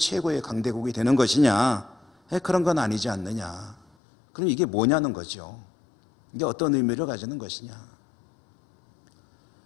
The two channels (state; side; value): drops out; right; at 3.9 s